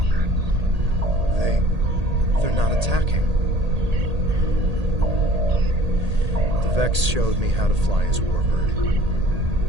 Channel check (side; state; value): left; late; 1.8 ms